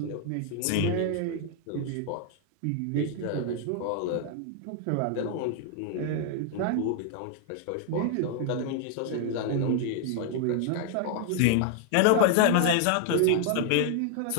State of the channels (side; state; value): both; different; correlation 0.00